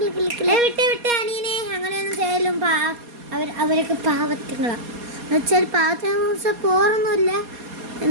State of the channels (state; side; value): late; left; 4.2 ms